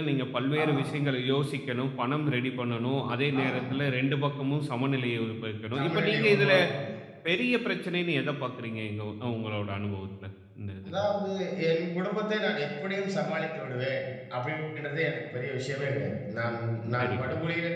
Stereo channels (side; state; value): both; identical; correlation 1.00